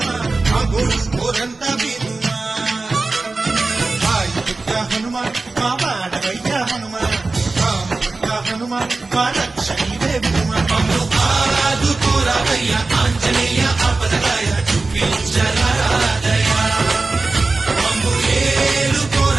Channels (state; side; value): quieter; left; 3.6 dB